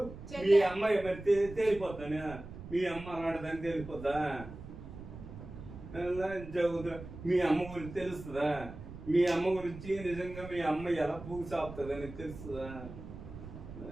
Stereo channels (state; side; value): noise; right; rumble, 13 dB below the sound